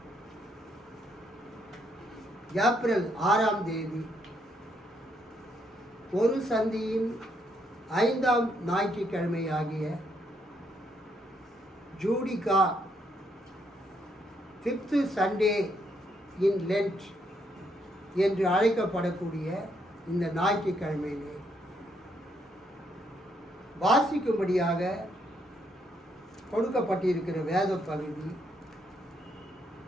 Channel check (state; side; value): normal; both; correlation 0.74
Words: ஏப்ரல் 6ஆம் தேதி ஒரு சந்தியின் 5ஆம் ஞாயிற்றுக்கிழமையாகிய ஜூடிகா 5th சண்டே இன் லென்ட் என்று அழைக்கப்படக்கூடிய இந்த ஞாயிற்றுக்கிழமையிலே வாசிக்கும்படியாக கொடுக்கப்பட்டிருக்கிற வேத பகுதி